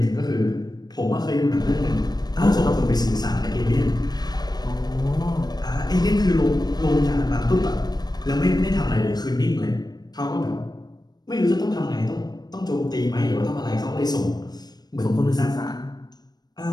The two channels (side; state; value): right; late; 0.19 ms